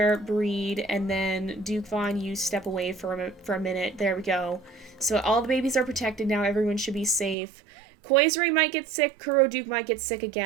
breed, and then Duke Vaughn, you step away for a minute. There we go. So all the babies are protected now. Everyone should be safe. Koizure might get sick. Kuroduke might get sick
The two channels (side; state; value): left; drops out; at 7.4 s